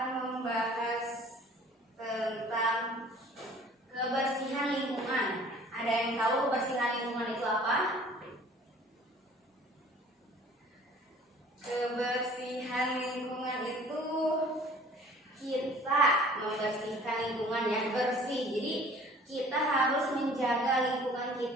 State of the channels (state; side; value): normal; both; correlation 0.51